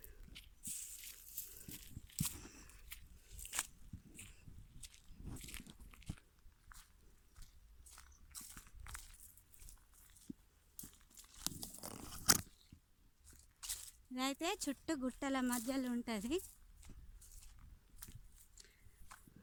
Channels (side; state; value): both; identical; correlation 1.00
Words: ఇదైతే చుట్టూ గుట్టల మధ్యలో ఉంటుంది.